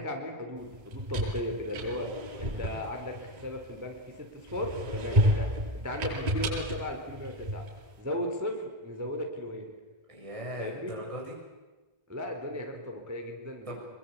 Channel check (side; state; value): left; late; 1.9 ms